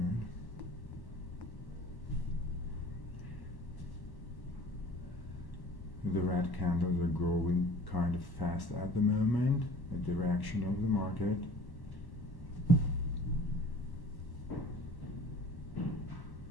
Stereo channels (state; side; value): late; right; 1.1 ms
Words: The red candles are growing kind of fast at the moment, the direction of the market. Okay.